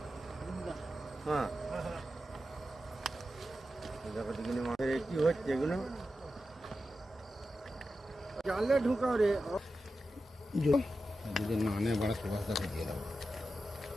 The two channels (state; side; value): normal; both; correlation 0.91